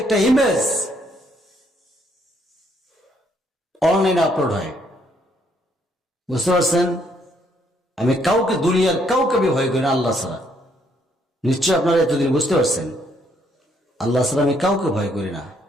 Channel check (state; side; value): normal; both; correlation 0.70